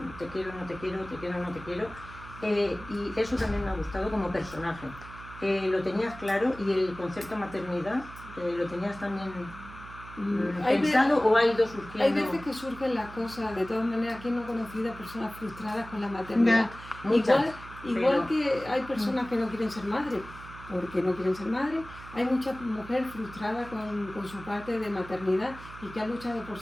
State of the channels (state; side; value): noise; right; hum, 15 dB below the sound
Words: quiero, no te quiero, te quiero, no te quiero, y eso también me ha gustado como personaje. Lo tenías claro y el concepto maternidad lo tenías también Hay pensado o ha ido surgiendo. hay veces que surgen las cosas, de todas maneras, ¿quién no ha conocido a personas frustradas con la maternidad? Muchas, Igual pero- que hay personas que no quieren ser madres, porque no quieren ser madres. Hay mucha mujer frustrada con su parte de maternidad y que ha luchado por